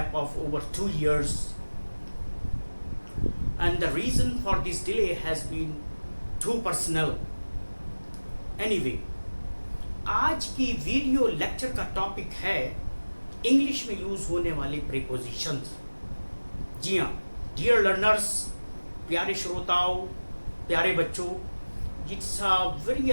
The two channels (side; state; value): both; inverted; correlation -1.00